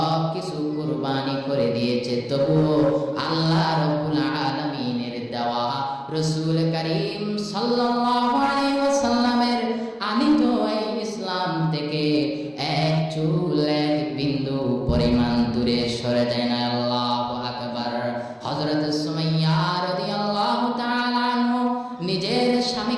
কিছু কুরবানি করে দিয়েছে। তবুও আল্লাহ রাব্বুল আলামিনের দেওয়া রাসূল করিম সাল্লাল্লাহু আলাইহি ওয়াসাল্লামের আনিত এই ইসলাম থেকে এক চুল, এক বিন্দু পরিমাণ দূরে সরে যায় না। আল্লাহু আকবার। হযরত সুমাইয়া রাদিয়াল্লাহু তাআলা আনহু নিজের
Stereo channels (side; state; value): both; identical; correlation 1.00